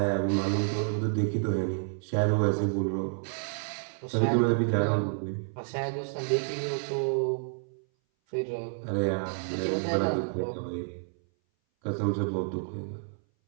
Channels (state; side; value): silent; left; 58 dB below the other